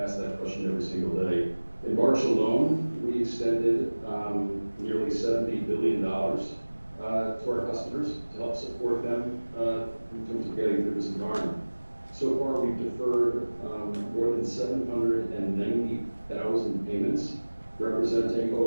that question every single day. In March alone, we extended nearly $70 billion to our customers to help support them in terms of getting through this environment. So far, we've deferred more than 790,000 payments, representing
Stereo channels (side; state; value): both; inverted; correlation -1.00